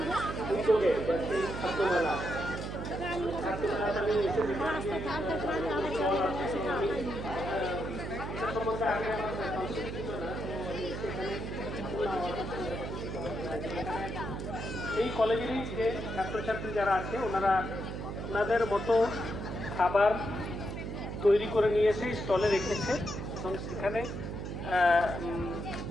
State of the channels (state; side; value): noise; right; hum, 5 dB below the sound